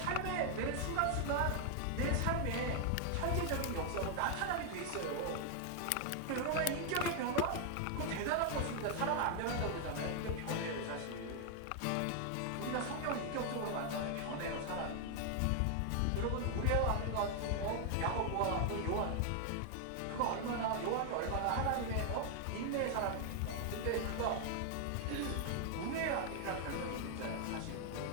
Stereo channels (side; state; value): both; different; correlation 0.00